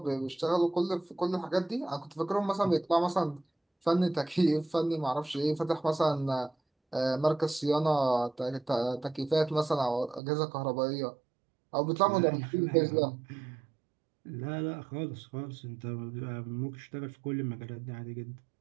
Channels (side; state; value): left; drops out; at 10.2 s